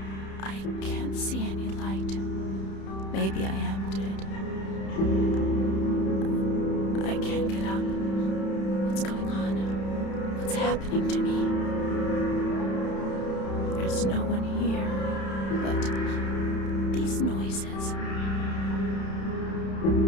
I can't see any light. Maybe I am dead. I can't get up. What's going on? What's happening to me? There's no one here, but these noises.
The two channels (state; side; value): late; right; 31 ms